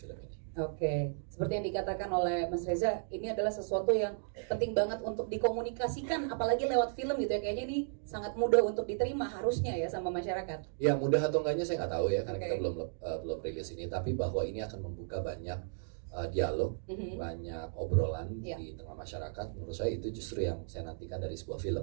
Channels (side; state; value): left; silent; digital silence